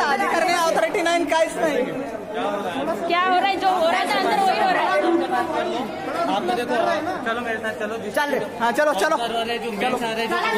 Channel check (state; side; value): identical; both; correlation 1.00